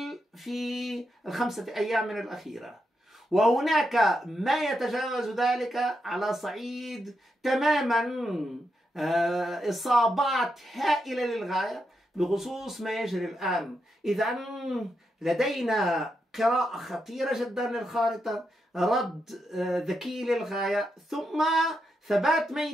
في ال5 أيام من الأخيرة، وهناك ما يتجاوز ذلك على صعيد تماما إصابات هائلة للغاية بخصوص ما يجري الآن. إذا لدينا قراءة خطيرة جدا للخارطة، رد ذكي للغاية، ثم ثبات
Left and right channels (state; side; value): normal; both; correlation 0.84